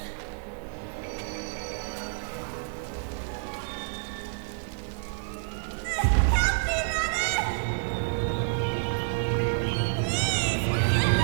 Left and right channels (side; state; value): left; silent; digital silence